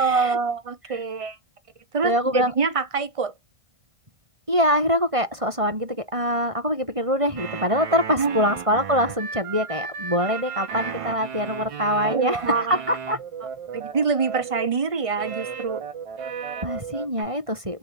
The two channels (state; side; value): late; left; 1.5 ms